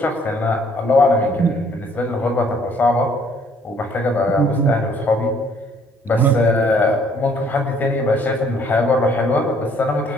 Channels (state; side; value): normal; both; correlation 0.62